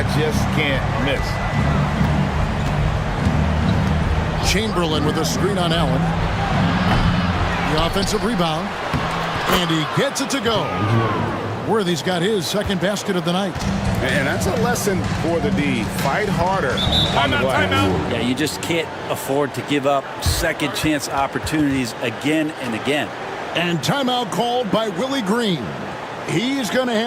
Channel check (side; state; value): both; identical; correlation 1.00